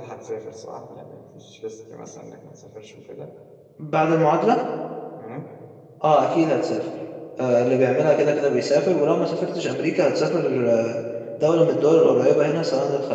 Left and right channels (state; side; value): identical; both; correlation 1.00